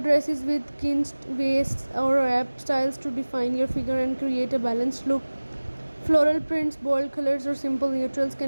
with cinched waists or wrap styles to define your figure and create a balanced look. Floral prints, bold colors, or simple neutrals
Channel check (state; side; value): inverted; both; correlation -1.00